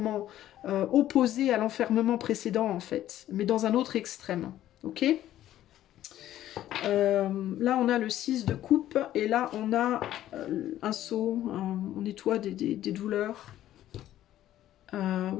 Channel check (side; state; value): right; quieter; 12.9 dB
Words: opposé à l'enfermement précédent en fait, mais dans un autre extrême. Ok. Là, on a le 6 de coupe et là, on a un seau, on nettoie des douleurs.